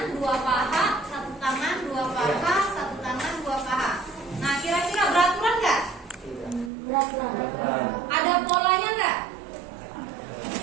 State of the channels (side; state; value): left; drops out; at 6.7 s